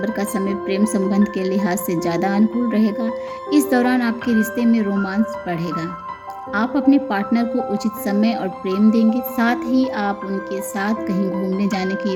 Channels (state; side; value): identical; both; correlation 1.00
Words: का समय प्रेम संबंध के लिहाज से ज़्यादा अनुकूल रहेगा। इस दौरान आपके रिश्ते में रोमांस बढ़ेगा। आप अपने पार्टनर को उचित समय और प्रेम देंगे, साथ ही आप उनके साथ कहीं घूमने जाने की